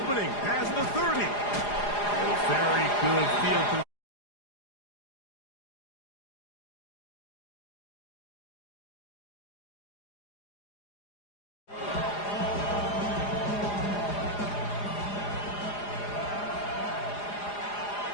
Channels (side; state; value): right; late; 4.9 ms